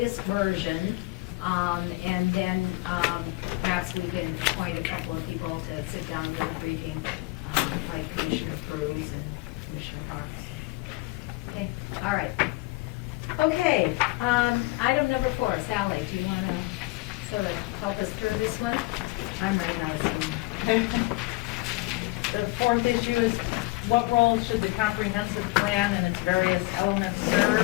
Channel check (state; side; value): quieter; right; 22.6 dB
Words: version, and then perhaps we can appoint a couple of people to sit down with a briefing, like Commissioner Cruz and Commissioner Parks. Okay, all right. Okay, item number 4, Sally, do you want to sort of help us through this one? I'm running out of steam. The 4th issue is what role should the comprehensive plan and its various elements